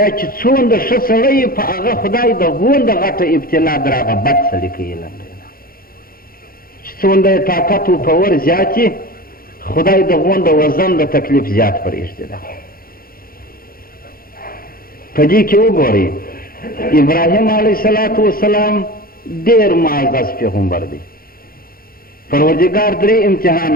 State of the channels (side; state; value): right; late; 0.42 ms